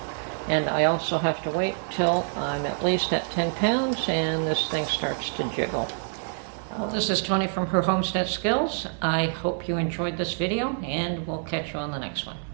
And I also have to wait till I'm at least at 10 pounds and this thing starts to jiggle. Well, this is Tony from Her Homestead Skills. I hope you enjoyed this video, and we'll catch you on the next one.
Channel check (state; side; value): silent; left; digital silence